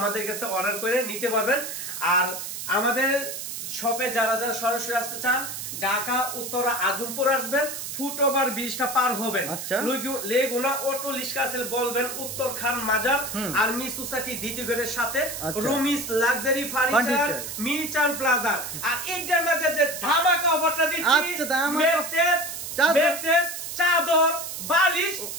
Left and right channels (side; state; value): right; noise; hiss, 7 dB below the sound